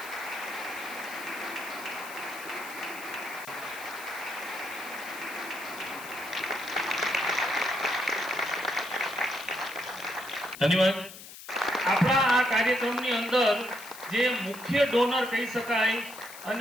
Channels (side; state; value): left; noise; hiss, 15 dB below the sound